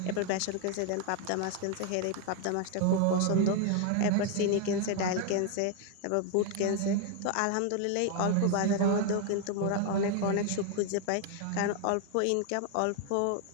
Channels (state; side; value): different; both; correlation 0.01